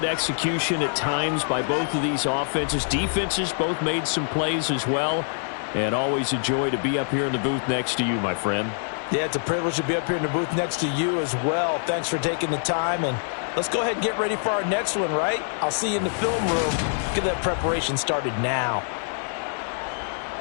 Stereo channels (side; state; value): right; silent; digital silence